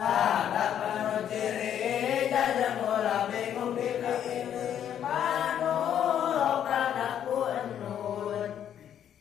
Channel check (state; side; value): quieter; right; 9.7 dB